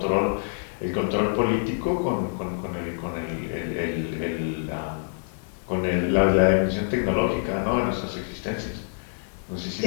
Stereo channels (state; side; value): silent; right; 56 dB below the other